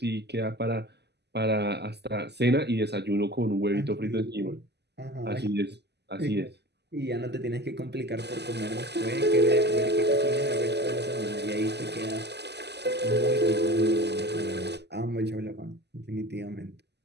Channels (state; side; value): late; left; 0.49 ms